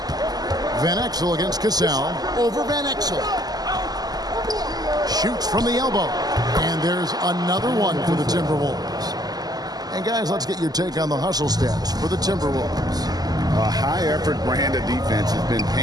Van Exel against Cassell. Over Van Exel. Shoots from the elbow. And there's another one for the Timberwolves. And guys, let's get your take on the hustle stats for the Timberwolves. A high-effort brand of defense has been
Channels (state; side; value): late; left; 0.19 ms